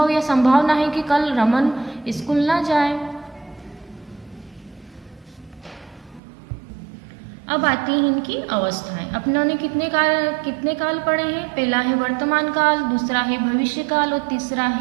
या संभावना है कि कल रमन स्कूल ना जाए। अब आती है इनकी अवस्थाएं। अपनों ने कितने काल पढ़े हैं, पहला है वर्तमान काल, दूसरा है भविष्य काल और तीसरा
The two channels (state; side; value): drops out; left; at 6.2 s